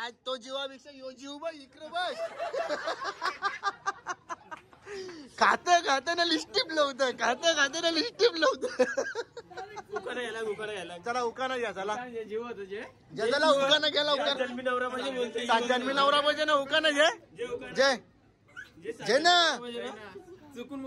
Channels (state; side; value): identical; both; correlation 1.00